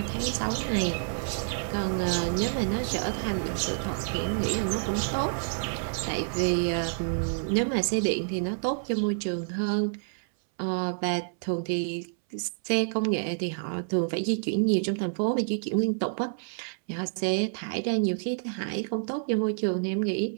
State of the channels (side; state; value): left; silent; 59 dB below the other